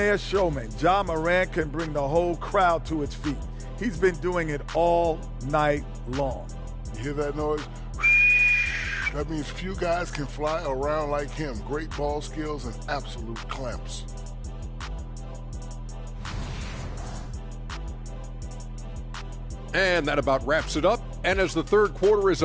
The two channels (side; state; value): both; identical; correlation 1.00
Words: showmen, Ja Morant can bring the whole crowd to its feet. He's been doing it all night long. You hear that noise? That means few guys can fly around like him. Great ball skills and absolute clamps. And that about wraps it up. And as the third quarter is